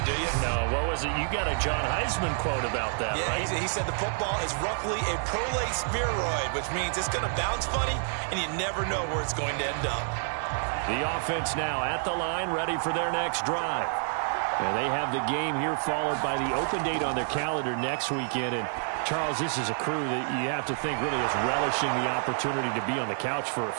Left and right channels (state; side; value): silent; left; digital silence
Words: do you? No, what was it? You got a John Heisman quote about that, yeah, right? He said the football is roughly a prolate spheroid, which means it's going to bounce funny, and you never know where it's going to end up. The offense now at the line, ready for their next drive. And they have the game here followed by the open date on their calendar next weekend. And Charles, this is a crew that you have to think really is relishing the opportunity to be on the couch for a